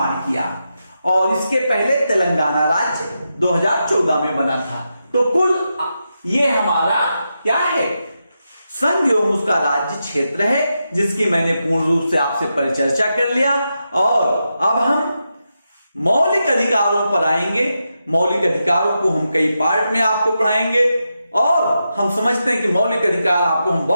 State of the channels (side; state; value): both; inverted; correlation -0.87